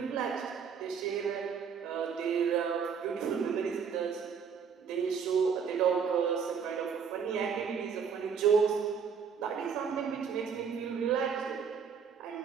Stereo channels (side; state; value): left; quieter; 6.6 dB